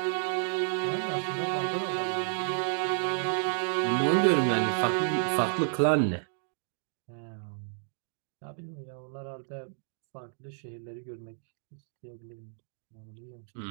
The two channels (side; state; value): left; silent; digital silence